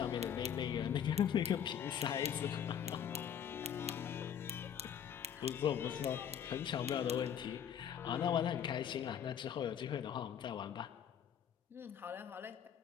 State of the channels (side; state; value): right; quieter; 8.7 dB